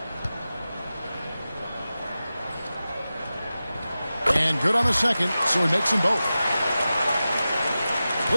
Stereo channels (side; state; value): both; inverted; correlation -0.94